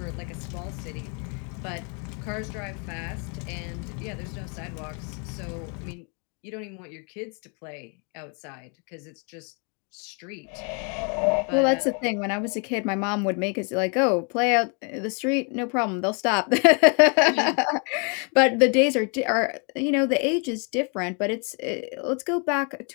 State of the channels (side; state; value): right; quieter; 37.3 dB